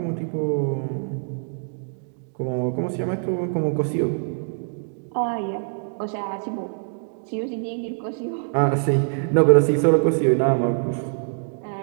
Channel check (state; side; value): silent; left; digital silence